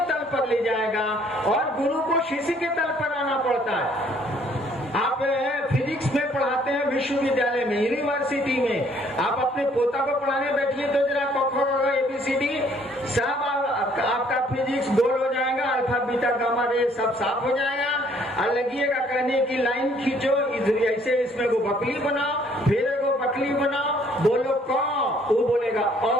तल पर ले जाएगा और गुरु को शिष्य के तल पर आना पड़ता है। आप फिजिक्स में पढ़ाते हैं विश्वविद्यालय में, यूनिवर्सिटी में, आप अपने पोता को पढ़ाने बैठिए तो जरा ABCD सब आपका फिजिक्स गोल हो जाएगा, अल्फा बीटा गामा रे सब साफ हो जाएगा। और लगिएगा कहने की लाइन खींचो, ऐसे इसमें को बकली बनाओ, फिर एगो बकली बनाओ, बोलो क, वो बोलेगा अ।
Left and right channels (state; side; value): normal; both; correlation 0.62